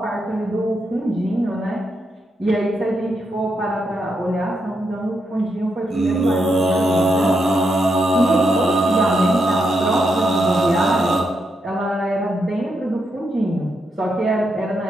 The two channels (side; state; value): both; normal; correlation 0.82